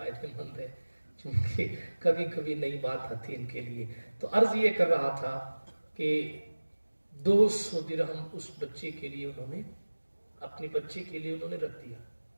مند ہے، چونکہ کبھی کبھی نئی بات آتی ان کے لیے۔ تو عرض یہ کر رہا تھا کہ 200 درہم اس بچے کے لیے انہوں نے، اپنے بچے کے لیے انہوں نے رکھ دیا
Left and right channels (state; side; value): inverted; both; correlation -1.00